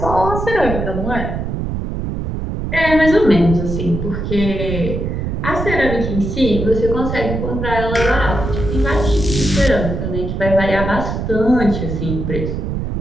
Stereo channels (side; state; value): right; noise; rumble, 3 dB below the sound